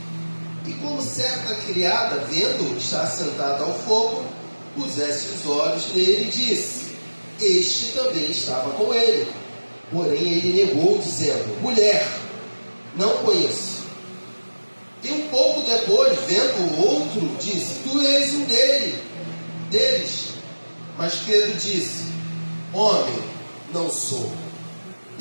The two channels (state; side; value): inverted; both; correlation -1.00